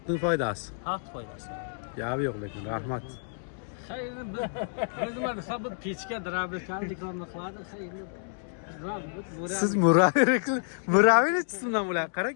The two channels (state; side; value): silent; right; digital silence